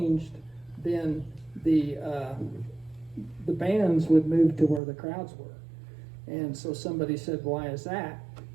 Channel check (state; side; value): drops out; left; at 4.8 s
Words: then the bands would move to where the crowds were. And so somebody said, why is that?